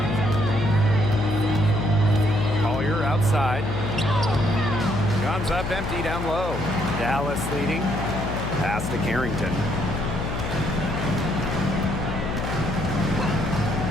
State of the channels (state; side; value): noise; left; hum, 4 dB below the sound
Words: Collier outside. Comes up empty down low. Dallas leading. Pass to Carrington.